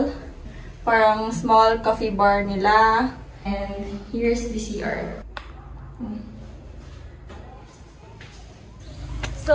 Parang small coffee bar nila. And here's the CR.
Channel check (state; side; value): identical; both; correlation 1.00